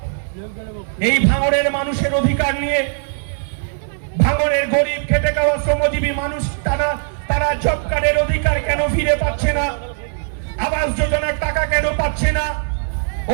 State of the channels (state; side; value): silent; left; digital silence